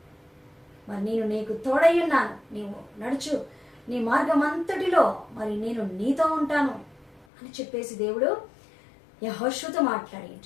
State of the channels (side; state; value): right; drops out; at 7.2 s